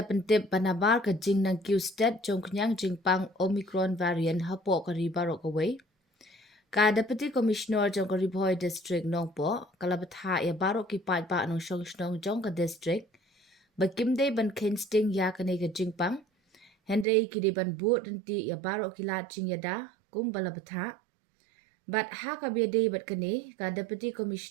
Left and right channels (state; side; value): drops out; left; at 17.1 s